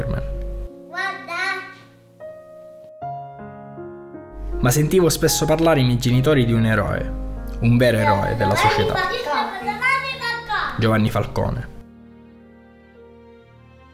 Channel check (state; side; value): identical; both; correlation 1.00